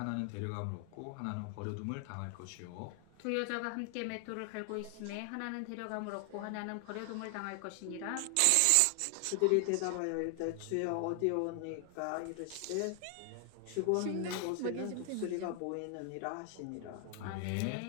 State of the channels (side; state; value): both; different; correlation 0.00